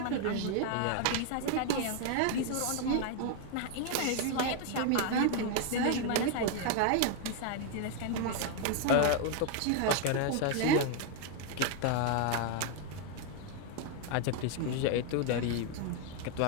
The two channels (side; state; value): both; different; correlation 0.00